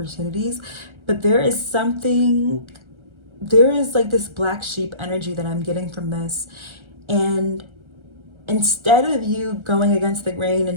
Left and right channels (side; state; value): left; late; 1.3 ms